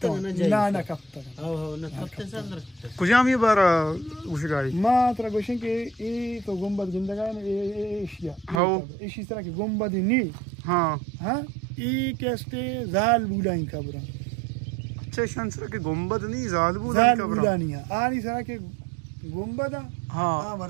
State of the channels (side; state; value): left; drops out; at 8.6 s